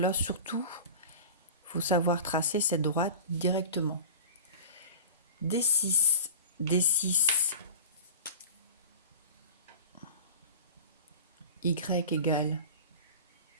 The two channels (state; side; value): inverted; both; correlation -0.35